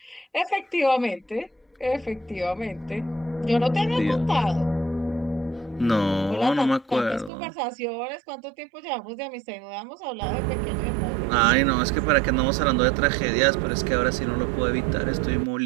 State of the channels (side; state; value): left; drops out; at 7.3 s